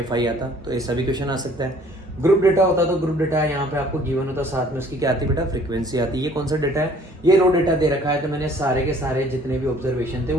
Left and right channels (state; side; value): normal; both; correlation 0.56